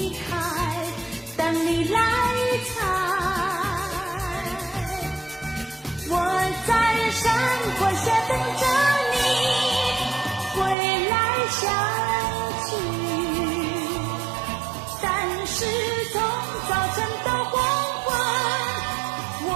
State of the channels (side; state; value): left; drops out; at 10.8 s